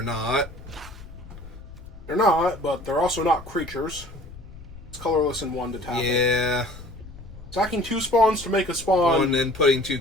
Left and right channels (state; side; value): noise; left; rumble, 16 dB below the sound